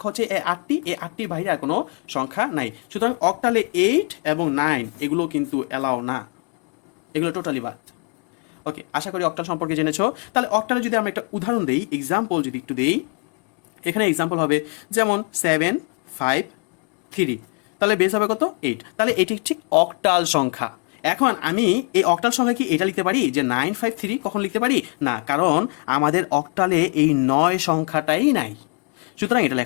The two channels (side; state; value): right; quieter; 36.4 dB